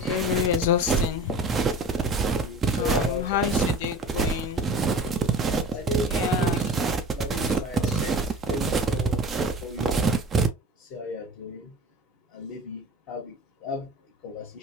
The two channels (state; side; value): normal; both; correlation 0.38